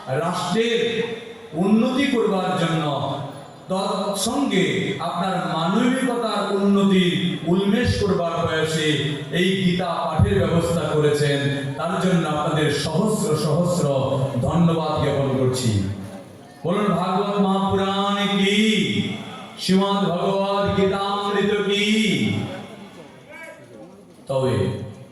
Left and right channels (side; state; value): both; identical; correlation 1.00